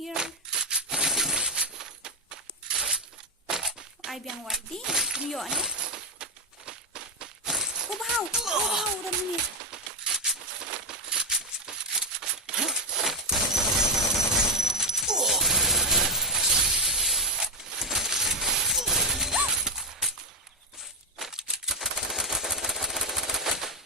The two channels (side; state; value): both; normal; correlation 0.03